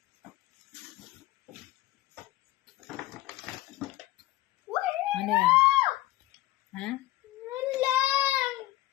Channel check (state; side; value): quieter; right; 16.8 dB